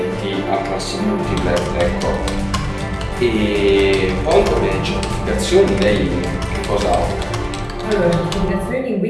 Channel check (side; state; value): both; identical; correlation 1.00